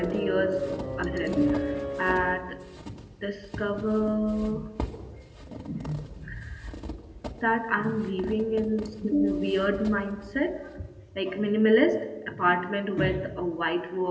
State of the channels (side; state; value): both; identical; correlation 1.00